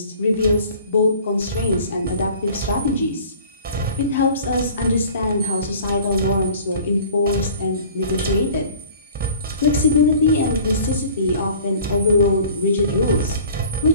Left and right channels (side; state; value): both; inverted; correlation -0.47